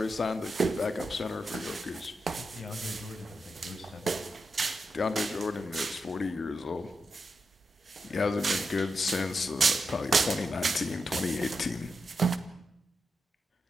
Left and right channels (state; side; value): normal; both; correlation 0.86